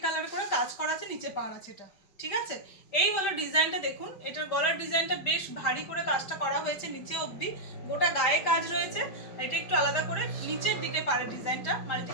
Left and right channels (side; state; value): right; late; 5.2 ms